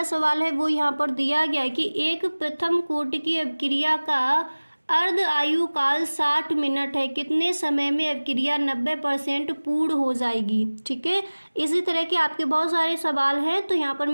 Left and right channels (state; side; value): inverted; both; correlation -1.00